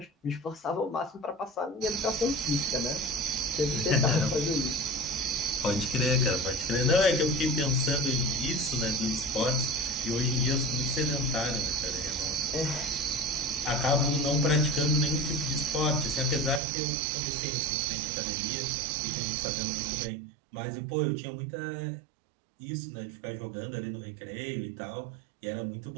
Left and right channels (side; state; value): left; drops out; at 16.6 s